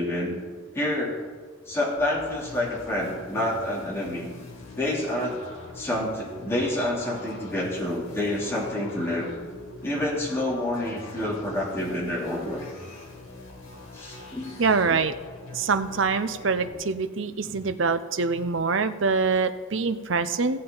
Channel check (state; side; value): normal; both; correlation 0.20